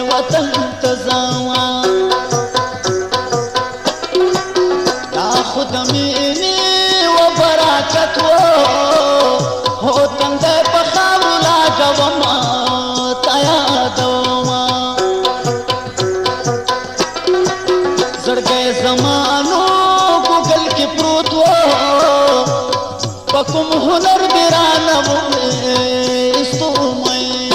وطن ته ځمه دا خو د مینې و برکت و هو تندی په خاورو لاګومه تا یادومه زړګی زمانو ګوګل کې پروت و په کوم هنر دې رانه وایستو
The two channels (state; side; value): identical; both; correlation 1.00